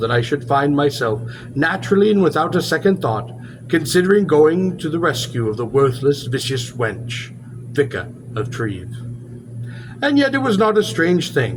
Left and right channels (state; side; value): identical; both; correlation 1.00